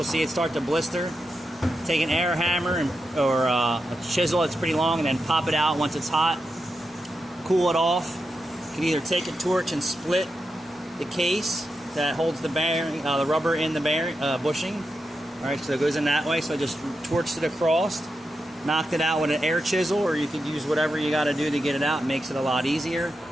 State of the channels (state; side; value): normal; both; correlation 0.87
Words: see it start to blister. Take an air hammer or a chisel that's pretty long and then pop it out once it's hot. Cool it off. You can either take a torch and split the case that holds the bearing, the rubber in the bearing, bushing. All right, so it goes in that way. So I just torched it across, knocked it out with an air chisel, or you could use whatever you got to do to get it out. It makes it a lot easier.